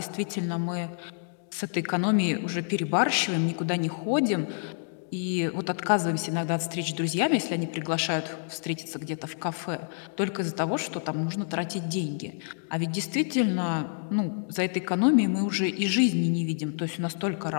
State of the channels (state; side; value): silent; right; digital silence